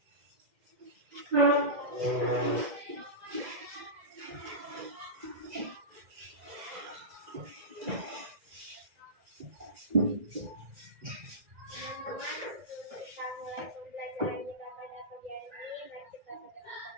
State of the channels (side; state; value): left; late; 2.0 ms